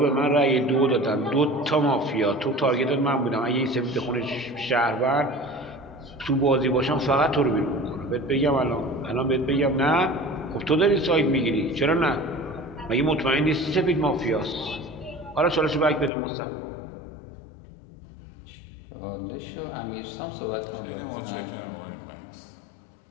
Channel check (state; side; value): drops out; right; at 16.1 s